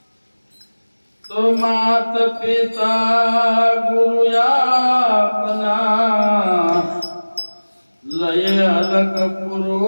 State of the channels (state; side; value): inverted; both; correlation -1.00